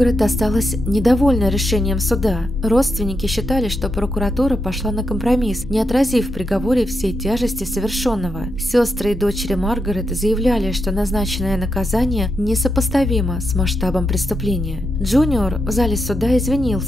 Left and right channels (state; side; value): normal; both; correlation 0.84